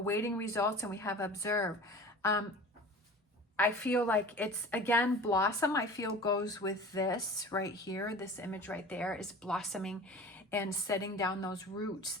results and we have observe. I feel like it's, again, blossom, I feel goes with this right here. This image right there is blossoming and setting down those roots.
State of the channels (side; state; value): both; normal; correlation 0.39